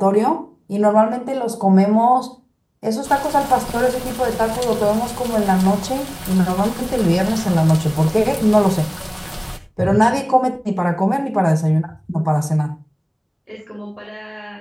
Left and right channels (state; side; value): identical; both; correlation 1.00